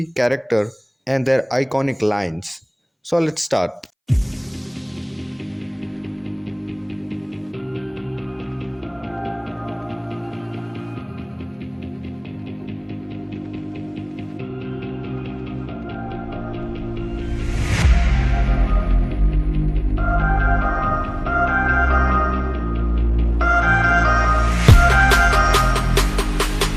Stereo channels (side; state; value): both; identical; correlation 1.00